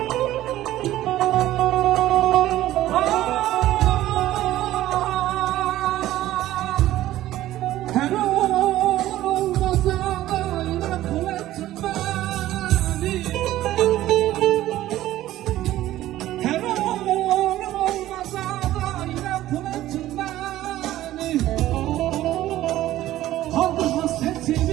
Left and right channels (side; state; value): left; quieter; 14.5 dB